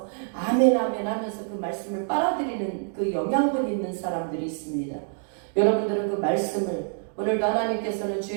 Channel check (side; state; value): left; silent; digital silence